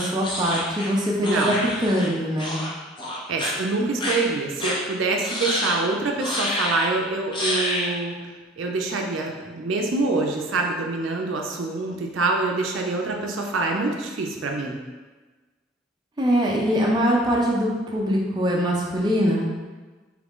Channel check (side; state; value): both; normal; correlation 0.48